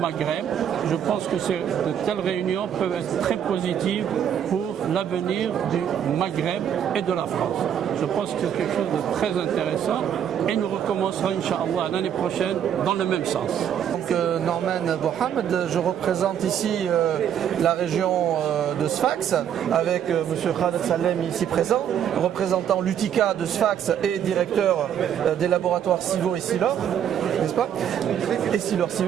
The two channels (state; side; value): quieter; left; 9.2 dB